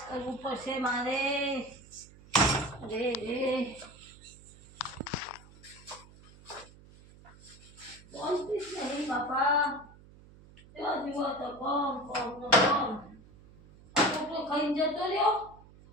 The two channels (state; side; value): noise; right; hum, 22 dB below the sound